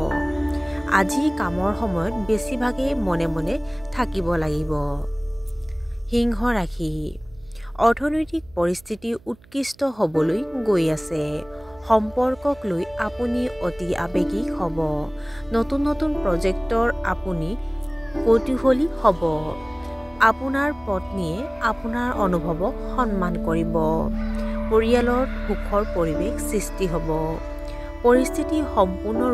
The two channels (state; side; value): noise; right; hum, 26 dB below the sound